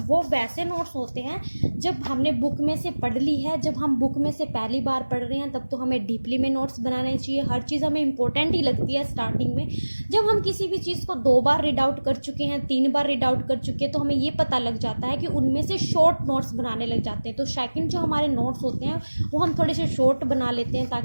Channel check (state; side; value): inverted; both; correlation -1.00